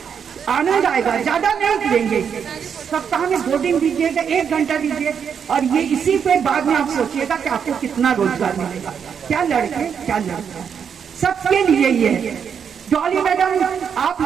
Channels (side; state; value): left; quieter; 7.3 dB